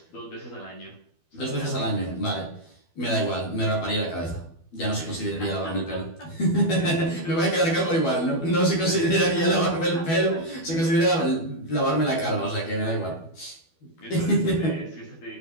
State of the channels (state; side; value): late; right; 12 ms